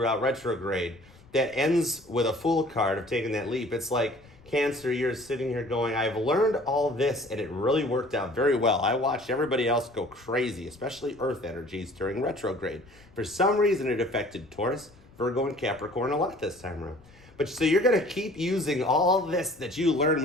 retrograde that ends with a Fool card of taking that leap, it's like, Cancer, you're sitting here going, I've learned all this, and it really worked out very well. I watched everybody else go crazy, especially Earth energies during retrograde. For some reason, it affected Taurus, Virgo, and Capricorn a lot this time around. But so you're going to keep using all this that you learn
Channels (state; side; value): noise; left; rumble, 26 dB below the sound